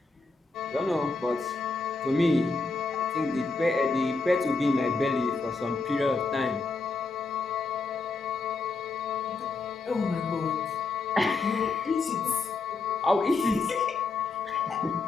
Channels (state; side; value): quieter; right; 3.9 dB